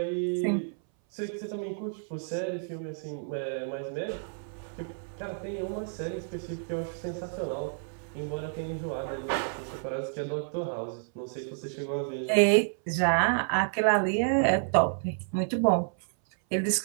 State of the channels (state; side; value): silent; left; 58 dB below the other